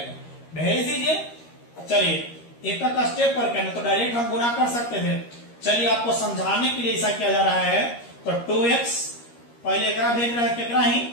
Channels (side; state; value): right; late; 13 ms